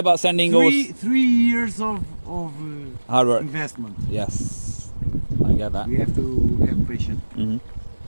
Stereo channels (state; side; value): inverted; both; correlation -1.00